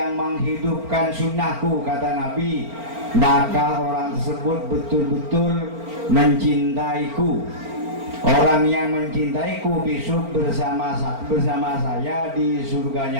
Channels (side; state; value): left; late; 4.4 ms